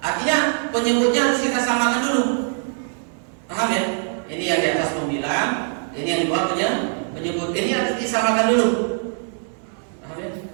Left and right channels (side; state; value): left; silent; 64 dB below the other